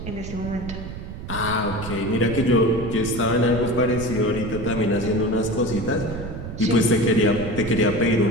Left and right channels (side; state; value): right; noise; rumble, 9 dB below the sound